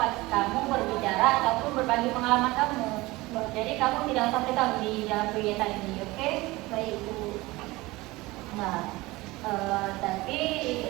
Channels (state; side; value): quieter; left; 20.7 dB